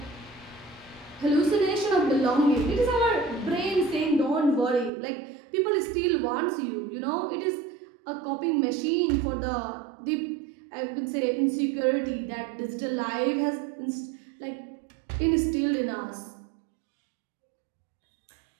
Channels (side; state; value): left; drops out; at 4.9 s